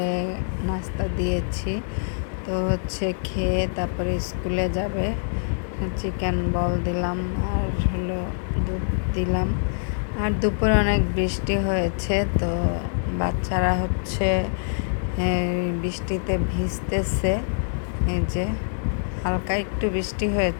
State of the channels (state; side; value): silent; right; 62 dB below the other